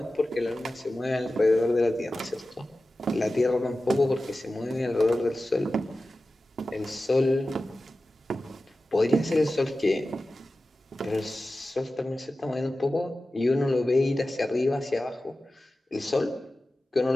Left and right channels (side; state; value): both; normal; correlation 0.95